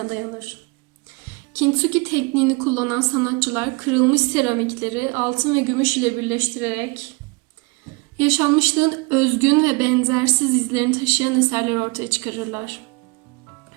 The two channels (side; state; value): left; quieter; 27.5 dB